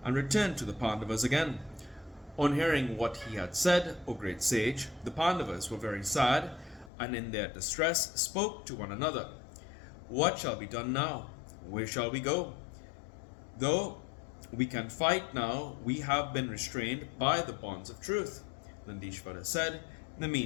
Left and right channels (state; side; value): drops out; right; at 6.9 s